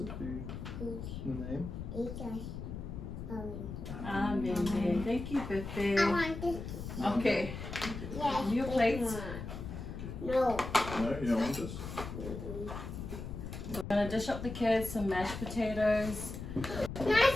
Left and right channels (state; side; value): noise; left; rumble, 8 dB below the sound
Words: food. The name. Amen. Thank you, Pepe. I want this. Okay. Yes. Your plates. No. No, you don't want this? We're gonna dish up the kids some mashed potatoes.